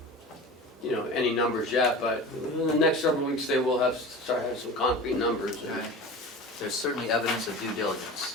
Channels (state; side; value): normal; both; correlation 0.34